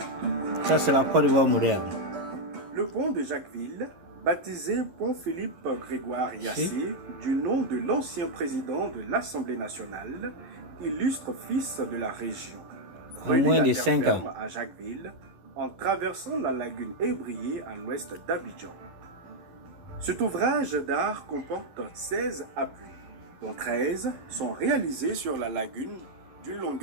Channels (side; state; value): left; late; 11 ms